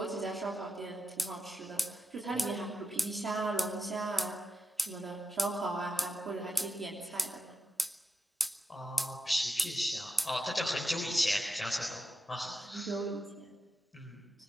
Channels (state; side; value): normal; both; correlation 0.87